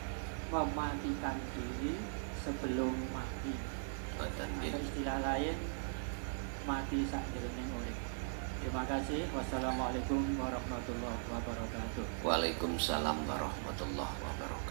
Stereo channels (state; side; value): silent; left; digital silence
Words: mematikan diri sebelum mati? Atau istilah lain, mati sakjroning urip. Terima kasih. Wassalamualaikum warahmatullahi wabarakatuh. Waalaikumsalam warahmatullahi